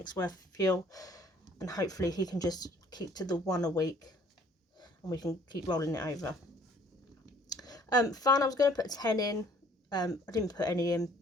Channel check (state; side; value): normal; both; correlation 0.58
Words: worth of fuel, and hopefully he can just keep to the 1 a week and we can keep rolling it over. Fun, I was going to put 10 in. I didn't put any in.